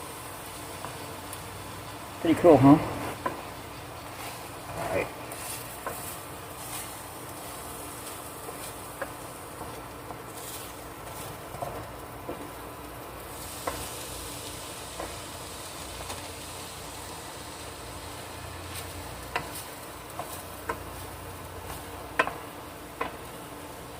Pretty cool, huh? All right.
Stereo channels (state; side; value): identical; both; correlation 1.00